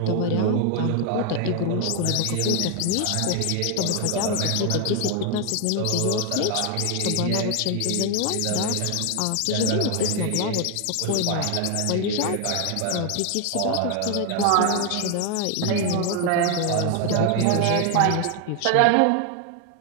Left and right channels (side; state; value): both; different; correlation 0.01